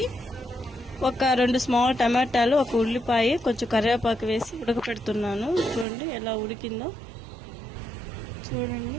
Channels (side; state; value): left; drops out; at 5.9 s